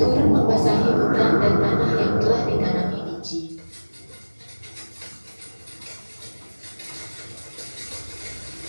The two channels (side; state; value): both; inverted; correlation -1.00